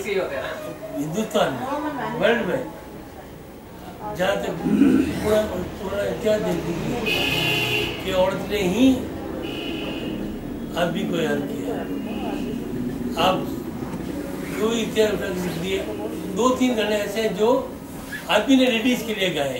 हिंदुस्तान में, वर्ल्ड में जहाँ तक पूरा इतिहास देख लीजिए कि औरत ने ही आदमी को याद किया। आप जो इतिहास लिख दिए, 2-3 गाने ऐसे हैं जो आदमी ने लेडीज के लिए गाए,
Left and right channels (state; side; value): identical; both; correlation 1.00